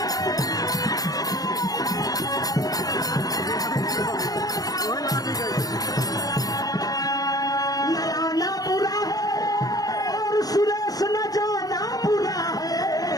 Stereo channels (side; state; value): right; late; 0.18 ms